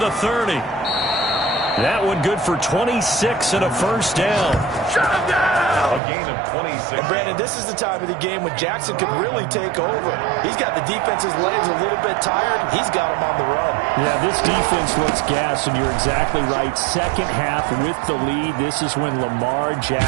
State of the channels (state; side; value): drops out; left; at 6.0 s